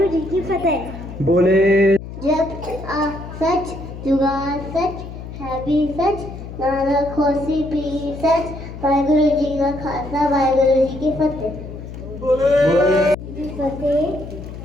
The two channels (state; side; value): noise; left; hum, 11 dB below the sound